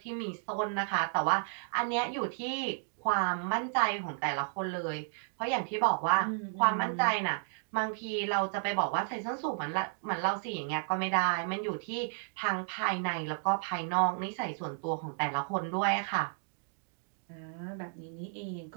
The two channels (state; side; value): silent; left; 56 dB below the other